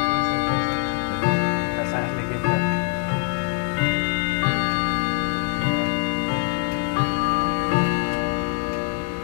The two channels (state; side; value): quieter; right; 38.4 dB